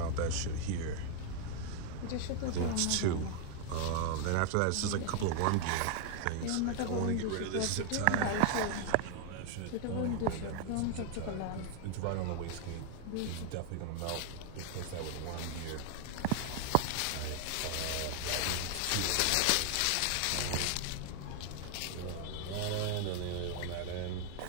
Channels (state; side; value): different; both; correlation 0.00